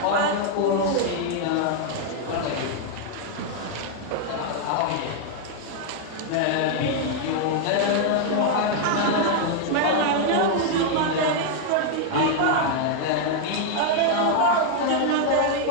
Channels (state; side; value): different; both; correlation 0.00